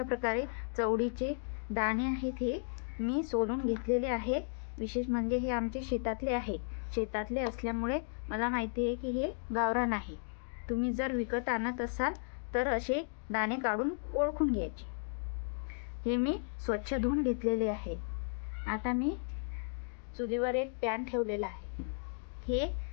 प्रकारे चवळीचे दाणे आहेत हे मी सोलून घेतलेले आहे। विशेष म्हणजे हे आमच्या शेतातले आहे। शेतातले असल्यामुळे मला माहिती आहे की हे गावरान आहे। तुम्ही जर विकत आणत असाल तर असे दाणे काढून ओळखून घ्यायचे। हे मी स्वच्छ धुवून घेतलेले आहे। आता मी चुलीवर एक पॅन ठेवलेला आहे। हे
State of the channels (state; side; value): silent; right; digital silence